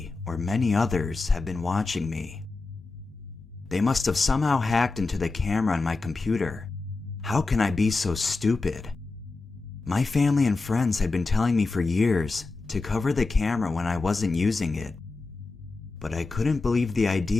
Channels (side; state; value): right; quieter; 3.7 dB